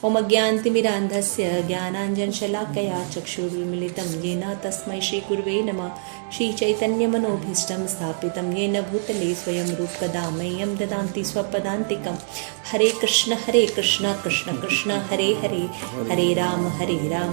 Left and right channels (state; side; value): silent; left; digital silence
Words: ओम अज्ञानतिमिरान्धस्य ज्ञानाञ्जनशलाकया चक्षुरुन्मीलितं येन तस्मै श्रीगुरुवे नमः। श्रीचैतन्यमनोभीष्टं स्थापितं येन भूतले स्वयं रूपकदा मह्यं ददाति स्वपदान्तिकं। हरे कृष्ण कृष्ण कृष्ण हरे हरे, हरे राम